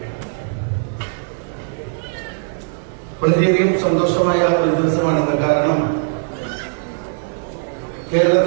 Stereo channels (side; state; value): left; silent; digital silence